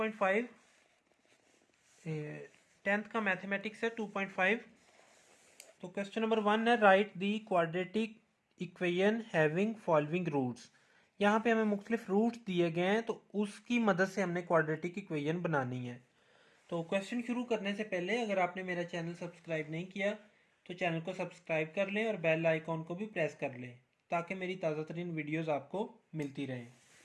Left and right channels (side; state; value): both; identical; correlation 1.00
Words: 10th का मैथमेटिक्स है 2.5। तो क्वेश्चन नंबर 1 है, write the quadratic equation having following roots. यहाँ पे हमें मुख्तलिफ रूट्स दिए गए हैं, तो उसकी मदद से हमने क्वाड्रेटिक इक्वेशन बनानी है। तो क्वेश्चन शुरू करने से पहले अगर आपने मेरा चैनल सब्सक्राइब नहीं किया तो चैनल को सब्सक्राइब कर लें और बेल आइकॉन को भी प्रेस कर लें ताकि मेरी ताज़ा तरीन वीडियोज़ आपको मिलती रहें।